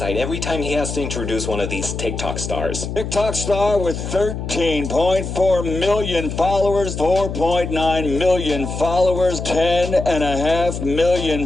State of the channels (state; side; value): noise; left; hum, 6 dB below the sound